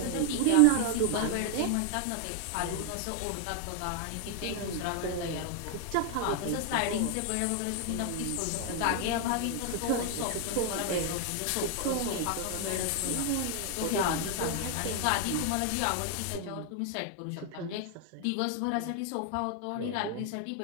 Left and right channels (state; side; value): different; both; correlation 0.00